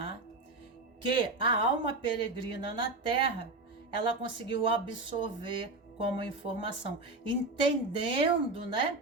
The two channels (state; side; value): quieter; left; 3.1 dB